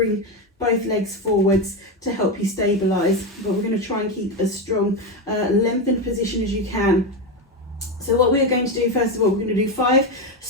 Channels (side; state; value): both; normal; correlation 0.12